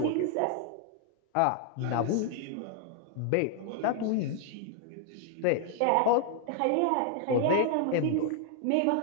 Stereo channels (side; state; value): both; different; correlation 0.00